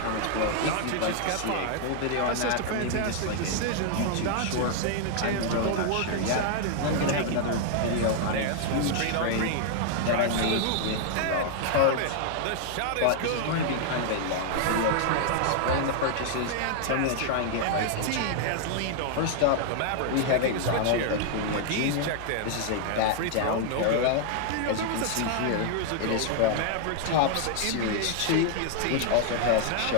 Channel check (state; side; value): different; both; correlation 0.00